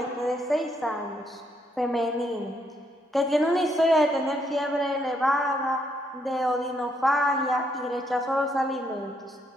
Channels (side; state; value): both; normal; correlation 0.74